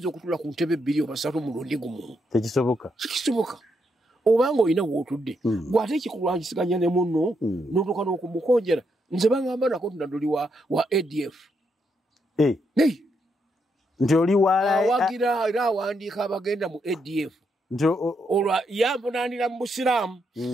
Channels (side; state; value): both; normal; correlation 0.79